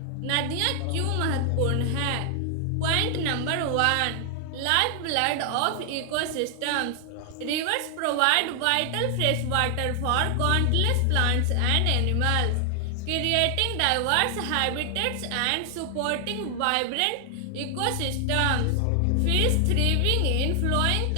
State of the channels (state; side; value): different; both; correlation 0.00